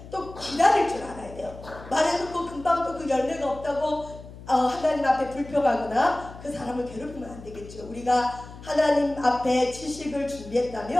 또 기다릴 줄 알아야 돼요. 말해놓고 금방 또 그 열매가 없다고 하나님 앞에 불평하거나 그 사람을 괴롭히면 안 되겠죠. 우리가 하나님 앞에 지식을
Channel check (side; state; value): left; noise; hum, 16 dB below the sound